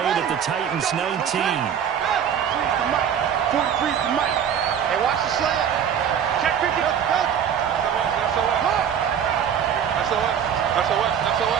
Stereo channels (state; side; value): quieter; left; 8.5 dB